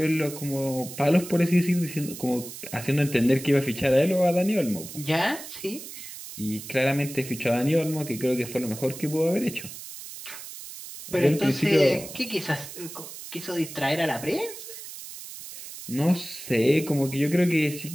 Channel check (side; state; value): right; noise; hiss, 12 dB below the sound